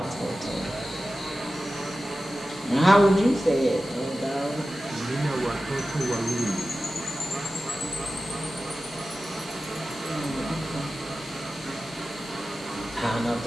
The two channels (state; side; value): normal; both; correlation 0.94